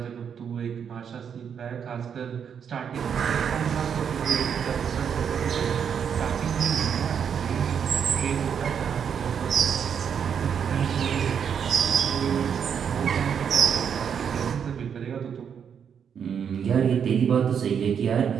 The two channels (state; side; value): quieter; left; 7.6 dB